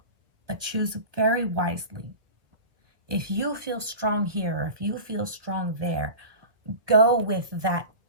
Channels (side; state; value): left; late; 1.4 ms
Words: But choose very wisely. If you feel strong here, or if you feel strong there, go with that